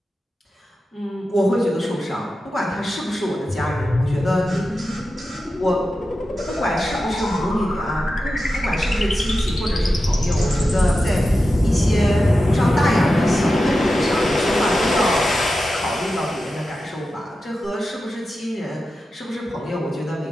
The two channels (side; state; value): both; normal; correlation 0.92